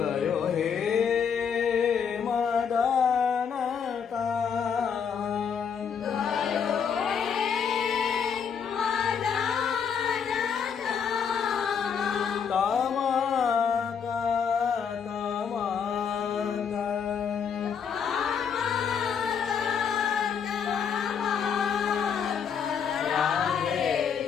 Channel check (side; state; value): right; quieter; 7.0 dB